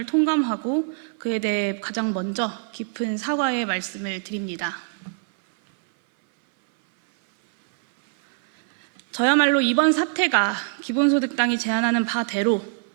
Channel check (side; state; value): left; silent; 59 dB below the other